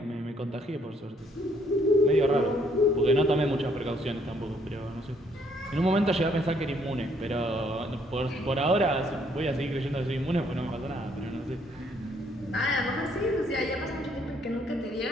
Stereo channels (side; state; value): both; normal; correlation 0.67